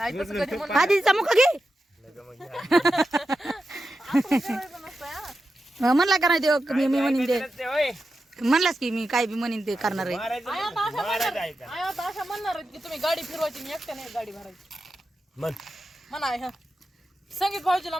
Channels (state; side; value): normal; both; correlation 0.90